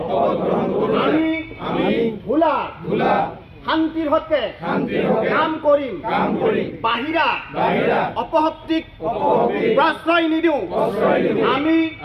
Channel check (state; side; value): identical; both; correlation 1.00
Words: আমি ভোলাৰ শান্তিৰ হকে কাম কৰিম, বাহিৰা অপশক্তিক প্ৰশ্ৰয় নিদিওঁ। আমি